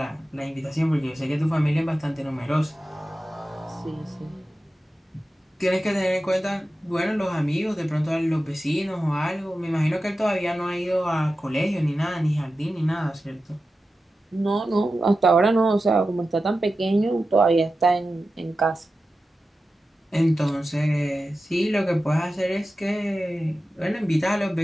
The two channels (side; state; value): both; normal; correlation 0.92